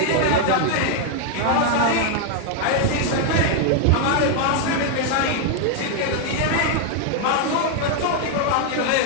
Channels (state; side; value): different; both; correlation 0.00